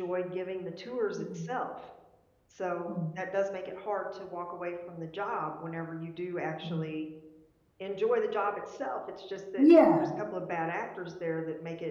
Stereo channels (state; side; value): identical; both; correlation 1.00